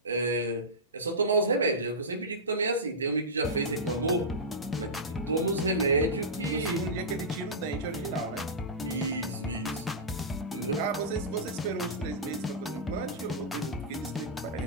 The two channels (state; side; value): normal; both; correlation -0.15